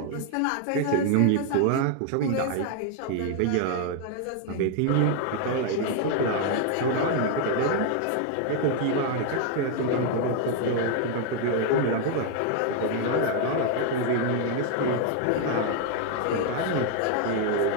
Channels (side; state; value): both; different; correlation 0.00